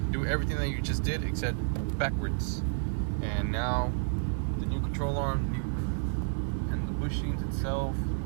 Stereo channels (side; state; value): left; silent; digital silence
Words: do everything that you just did except backwards. And now the new control arm, and the bushings itself